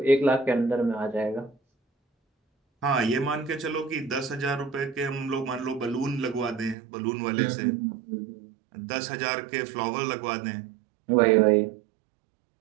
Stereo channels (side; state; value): left; drops out; at 6.8 s